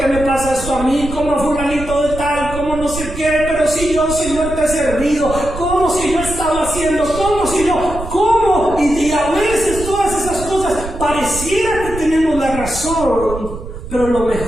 me pasa esto a mí? Como fulanito de tal, como no sé qué, pero si yo, Señor, te he servido, ¿cómo si yo he estado haciendo? ¿Cómo si yo? ¿Cómo? Y a veces todas esas cosas pareciera que tenemos la razón, pero lo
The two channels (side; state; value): right; noise; rumble, 10 dB below the sound